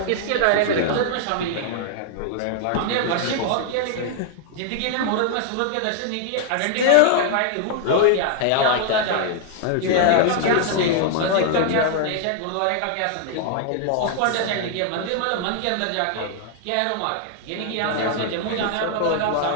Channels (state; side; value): different; both; correlation 0.00